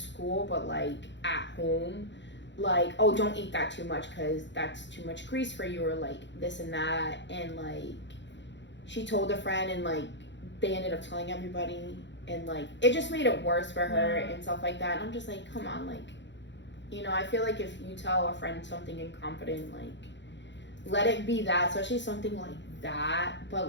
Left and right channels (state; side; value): late; right; 0.52 ms